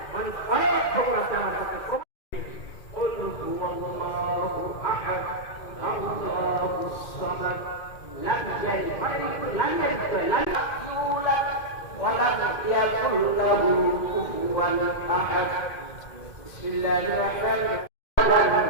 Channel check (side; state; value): right; late; 2.1 ms